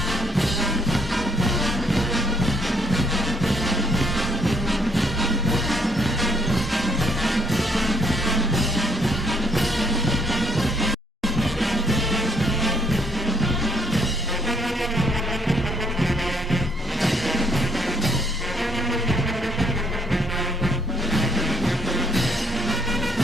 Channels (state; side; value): normal; both; correlation 0.68